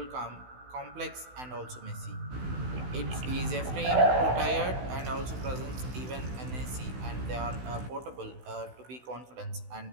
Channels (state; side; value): late; left; 16 ms